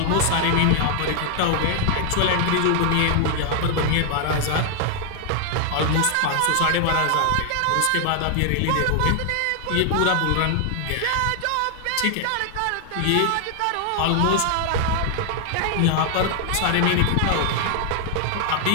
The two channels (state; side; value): different; both; correlation 0.00